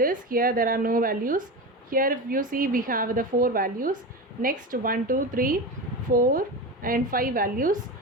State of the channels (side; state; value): both; normal; correlation 0.23